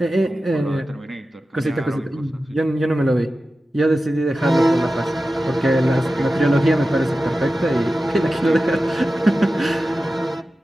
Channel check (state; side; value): normal; both; correlation 0.94